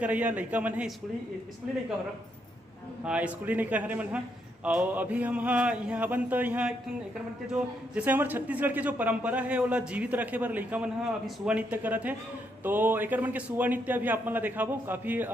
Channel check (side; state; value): both; normal; correlation 0.77